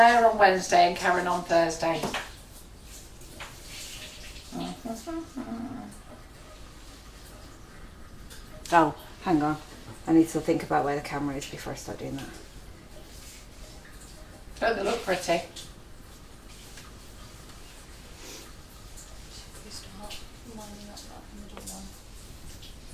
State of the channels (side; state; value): both; identical; correlation 1.00